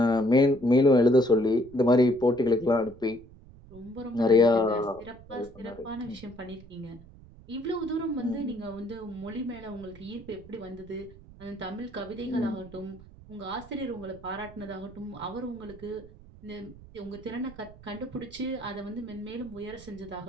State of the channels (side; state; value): right; noise; rumble, 20 dB below the sound